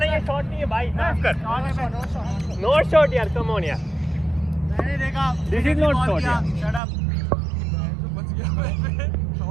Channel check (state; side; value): drops out; left; at 6.8 s